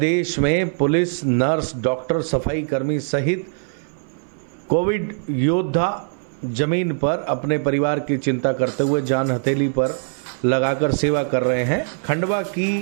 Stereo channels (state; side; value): silent; left; 60 dB below the other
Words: में पुलिस, नर्स, डॉक्टर, सफाई कर्मी सहित कोविड योद्धा जमीन पर अपने परिवार की चिंता करते हुए जान हथेली पर लगाकर सेवा कर रहे हैं। खंडवा